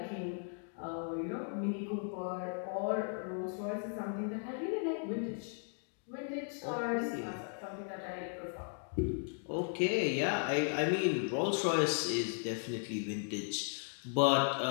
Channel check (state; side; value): silent; right; 53 dB below the other